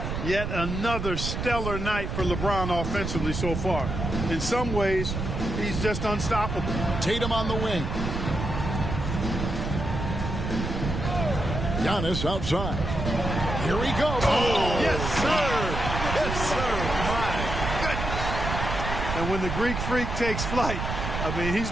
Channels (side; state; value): right; noise; rumble, 4 dB below the sound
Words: Yet another stellar night for LeBron offensively so far. In some ways, he's just unstoppable. Tatum on the wing. Giannis outside. Here he goes. Oh, yes, sir. Yes, sir. My goodness. And when the Greek Freak takes flight, I mean, he's